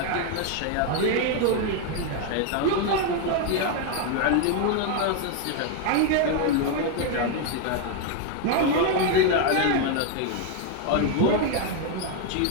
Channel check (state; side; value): different; both; correlation 0.01